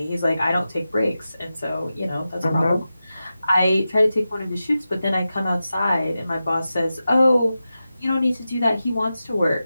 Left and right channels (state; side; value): inverted; both; correlation -0.92